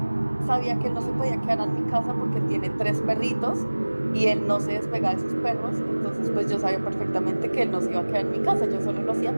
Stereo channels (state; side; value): inverted; both; correlation -1.00